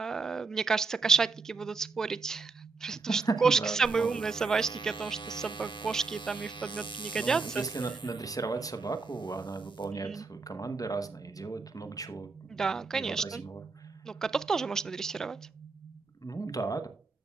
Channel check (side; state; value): left; quieter; 4.3 dB